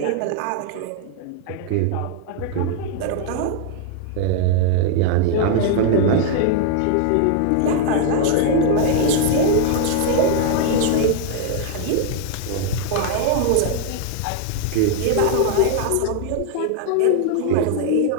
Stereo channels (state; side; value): different; both; correlation 0.00